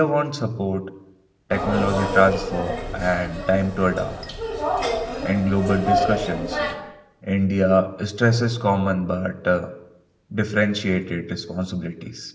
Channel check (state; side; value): identical; both; correlation 1.00